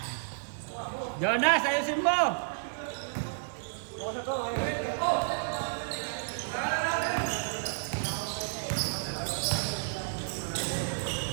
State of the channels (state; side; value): silent; left; 57 dB below the other